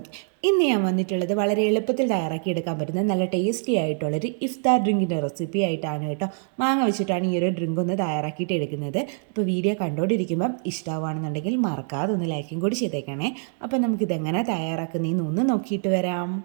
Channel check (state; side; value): silent; left; 55 dB below the other